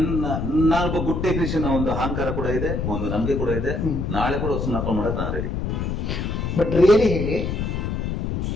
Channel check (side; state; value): left; noise; rumble, 2 dB below the sound